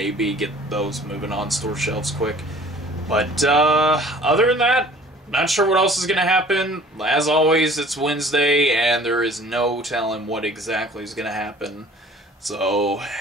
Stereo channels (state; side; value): normal; both; correlation 0.49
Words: get those moving on store shelves quick. But, other than that, not sure what else is going to happen. As always, it's Wednesday, and there is no telling what exactly is going to happen. So,